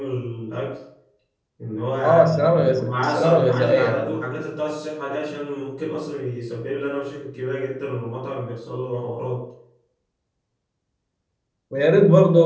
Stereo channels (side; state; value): both; identical; correlation 1.00